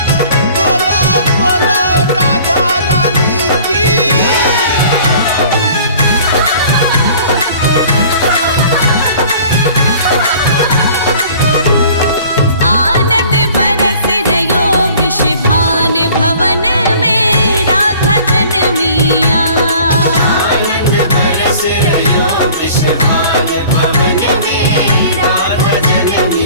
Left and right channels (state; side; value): inverted; both; correlation -0.49